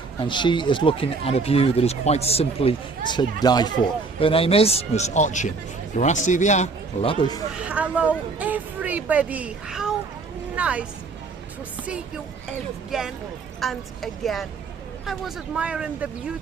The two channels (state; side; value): quieter; left; 4.2 dB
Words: and she is looking at a view that is quite simply to die for. Her name is Miss Ochin. Gracias, love. Hello everybody, how nice to see you again and again. I was admiring the